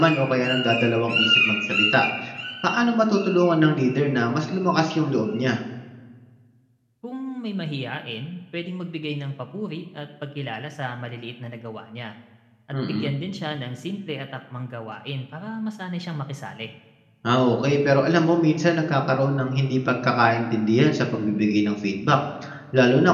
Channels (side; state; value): both; identical; correlation 1.00